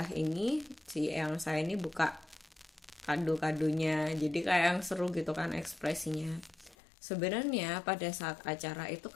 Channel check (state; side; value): drops out; right; at 6.8 s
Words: ini, si yang saya ini buka kado-kadonya. Jadi kayak yang seru gitu kan ekspresinya. Sebenarnya pada saat acara itu